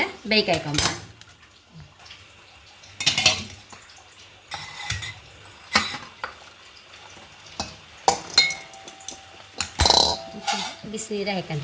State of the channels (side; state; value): both; identical; correlation 1.00